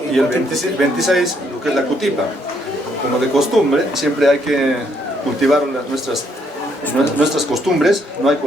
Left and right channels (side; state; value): both; normal; correlation 0.71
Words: y el 26 lo que es la cutipa. Como de costumbre, siempre hay que cultivar nuestras costumbres, no hay que